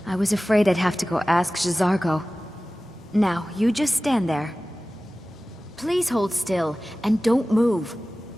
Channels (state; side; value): normal; both; correlation 0.97